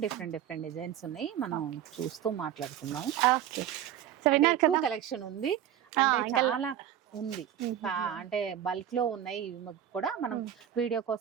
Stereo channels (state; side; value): quieter; left; 10.6 dB